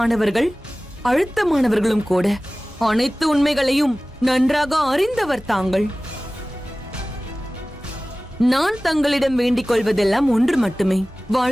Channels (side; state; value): both; normal; correlation 0.97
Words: அழுத்தமானவர்களும் கூட. அனைத்து உண்மைகளையும் நன்றாக அறிந்தவர் தாங்கள். நான் தங்களிடம் வேண்டிக் கொள்வதெல்லாம் ஒன்று மட்டுமே.